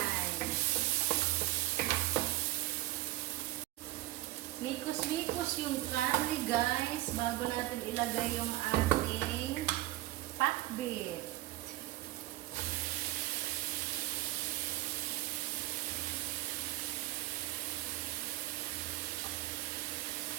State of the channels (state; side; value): quieter; left; 17.3 dB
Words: Mikos-mikos yung karne guys bago natin ilagay yung ating pakbit.